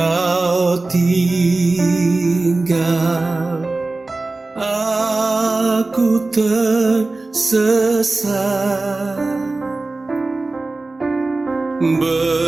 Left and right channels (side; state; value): left; quieter; 3.3 dB